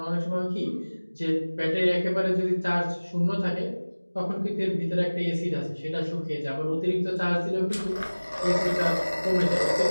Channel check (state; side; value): inverted; both; correlation -1.00